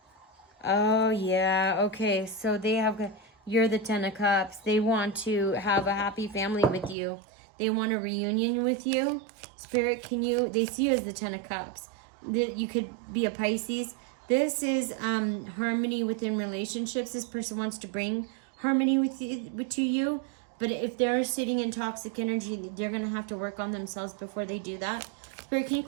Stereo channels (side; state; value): left; drops out; at 7.0 s